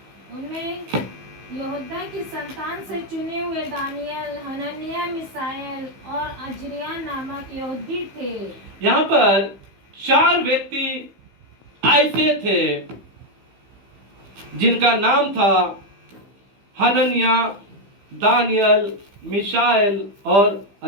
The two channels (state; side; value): late; left; 15 ms